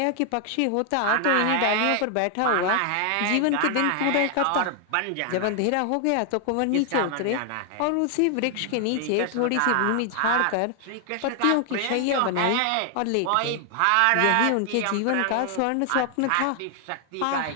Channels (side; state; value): both; different; correlation 0.00